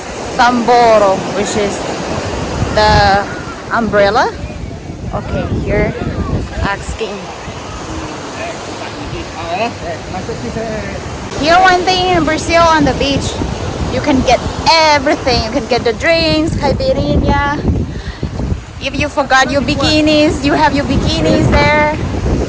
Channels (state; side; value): identical; both; correlation 1.00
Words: Samboro, which is the umbrella. Okay, here asking. Here, one thing in Brazil on the beach, you can get everything. You can get the drinks, caipirinha. If you forgot your bikinis, you have your bikinis there.